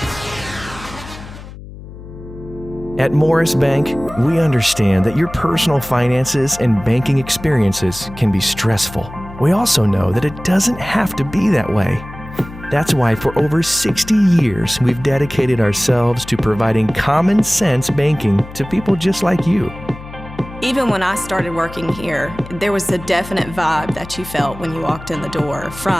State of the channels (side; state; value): left; noise; hum, 15 dB below the sound